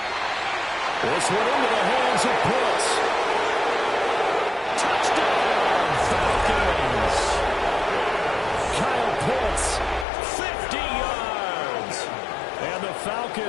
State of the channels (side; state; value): right; drops out; at 10.1 s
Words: This one into the hands of Pitts. Touchdown, Falcons. Kyle Pitts, 50 yards. And the